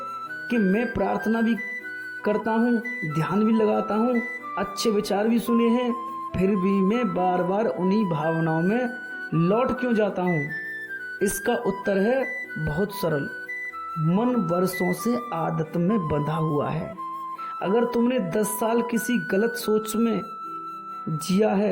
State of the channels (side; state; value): both; identical; correlation 1.00